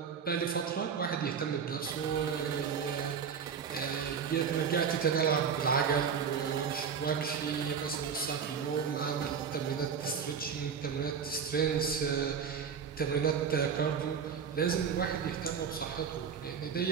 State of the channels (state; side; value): quieter; left; 6.8 dB